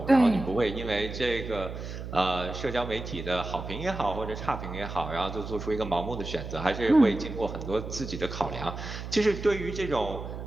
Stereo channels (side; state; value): right; noise; hum, 8 dB below the sound